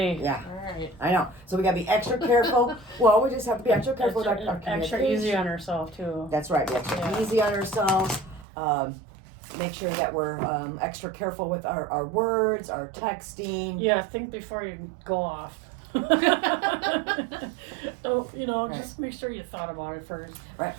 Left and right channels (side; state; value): left; drops out; at 8.5 s